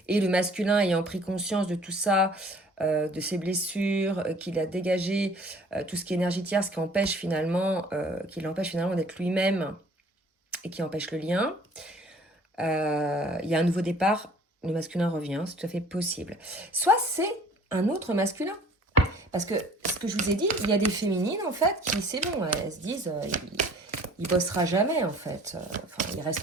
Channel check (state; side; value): normal; both; correlation 0.52